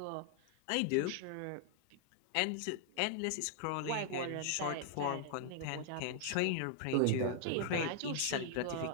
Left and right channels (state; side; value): different; both; correlation 0.00